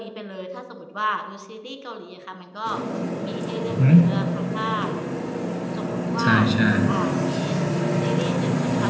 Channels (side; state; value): both; identical; correlation 1.00